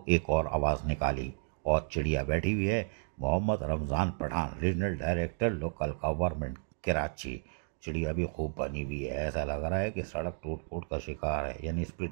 एक और आवाज़ निकाली और चिड़िया बैठी हुई है। Mohammad Ramzan Pathan, regional director local government Karachi. चिड़िया भी खूब बनी हुई है, ऐसा लग रहा है कि सड़क टूट फूट का शिकार है, यानी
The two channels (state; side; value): silent; left; digital silence